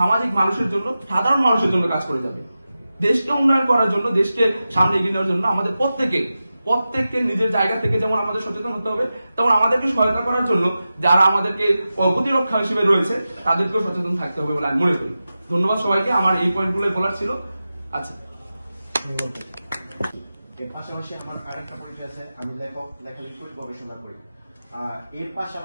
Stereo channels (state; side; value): inverted; both; correlation -0.93